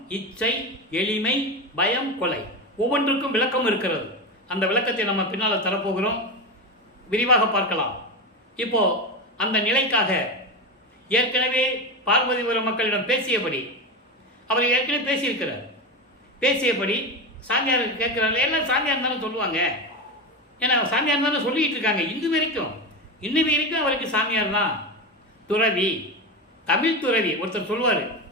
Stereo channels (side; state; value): both; normal; correlation 0.19